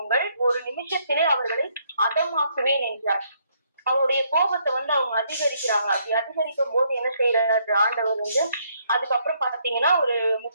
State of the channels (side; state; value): both; inverted; correlation -0.70